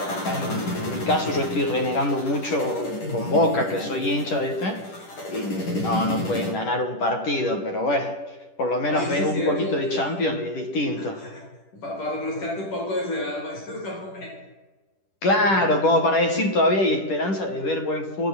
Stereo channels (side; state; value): right; late; 10 ms